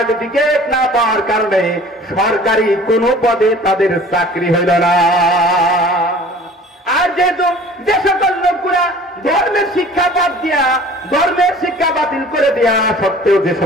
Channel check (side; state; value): both; normal; correlation 0.47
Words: না পাওয়ার কারণে সরকারি কোনো পদে তাদের চাকরি হইল না। আর যেহেতু যে সকল লোকগুলা ধর্মের শিক্ষা বাদ দিয়া, ধর্মের শিক্ষা বাতিল করে দেয়া সত্ত্বেও যে